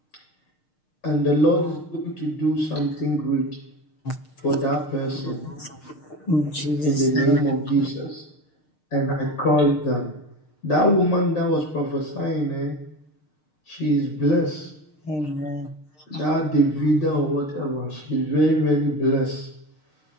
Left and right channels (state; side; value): late; right; 6.6 ms